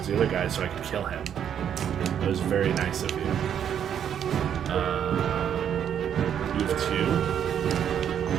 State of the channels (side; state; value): left; quieter; 9.0 dB